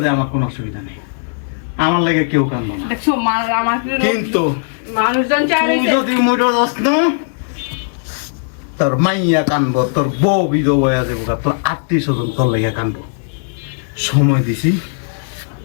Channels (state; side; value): silent; right; 66 dB below the other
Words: যাই আমার কোনো অসুবিধা নেই, আমার লাগে কেউ কান্দো না, দেখছো আমার কিন্তু মানুষজন চায় তুই যদি মইরা যাস না, তোর মাইয়া কানবো, তোর বউ বিধবা হয়ে যাবো, তোর আত্মীয় স্বজন তোর লাগে কানবো। সময় দিছি